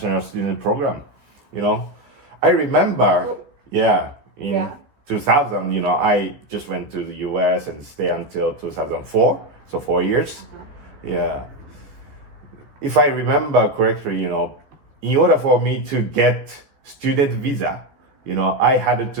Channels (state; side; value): late; left; 14 ms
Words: student program. I remember, in 2000, I just went to the US and stay until 2004, so 4 years. Yeah. If I remember correctly, in order for me to get student visa, I had